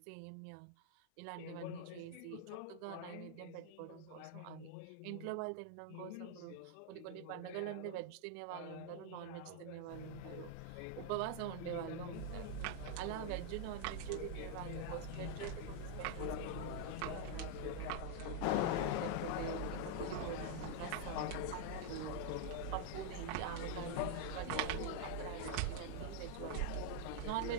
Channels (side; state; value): both; different; correlation 0.00